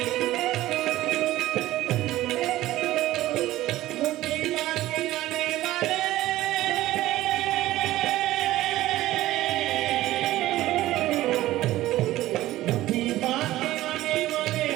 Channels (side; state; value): left; quieter; 15.7 dB